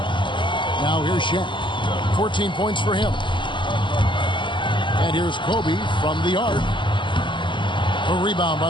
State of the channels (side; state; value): right; late; 0.24 ms